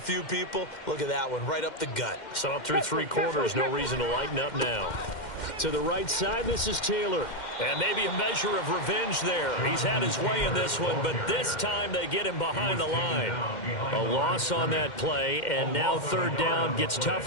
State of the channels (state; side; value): late; right; 2.1 ms